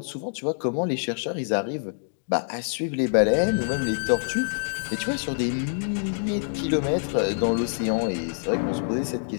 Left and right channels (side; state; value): right; silent; digital silence